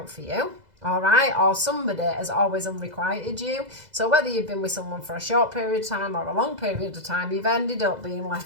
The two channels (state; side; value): late; left; 2.0 ms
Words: for you. All right, or somebody has always unrequited you. So whether you've been with someone for a short period of time or a long period of time, you've ended up being